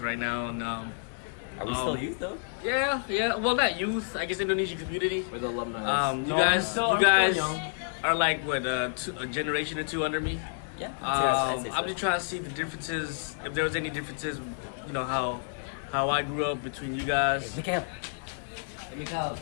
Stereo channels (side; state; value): right; silent; digital silence